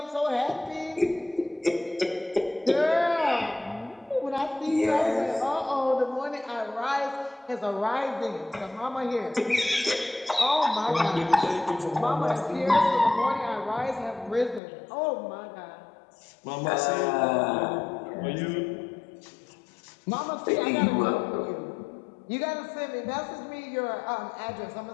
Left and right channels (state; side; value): drops out; right; at 14.6 s